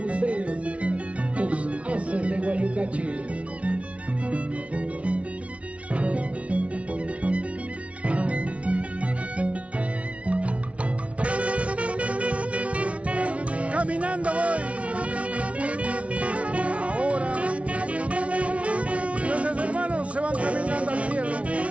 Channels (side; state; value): left; late; 0.063 ms